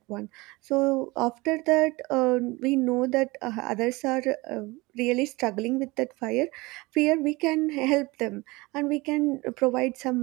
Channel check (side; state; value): left; quieter; 23.0 dB